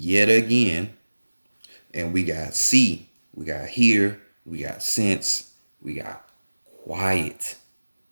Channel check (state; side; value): inverted; both; correlation -1.00